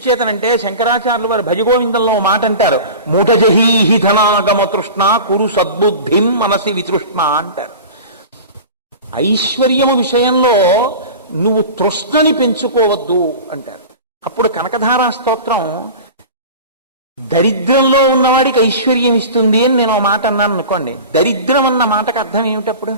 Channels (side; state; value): both; inverted; correlation -0.35